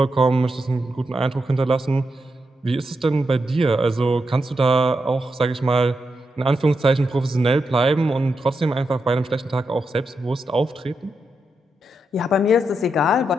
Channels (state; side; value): normal; both; correlation 0.85